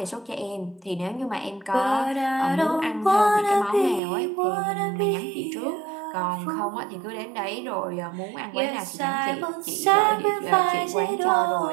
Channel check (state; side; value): drops out; left; at 4.0 s